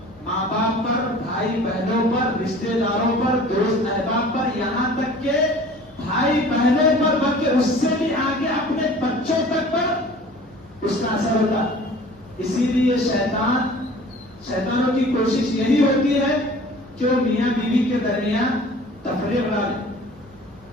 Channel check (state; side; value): normal; both; correlation 0.46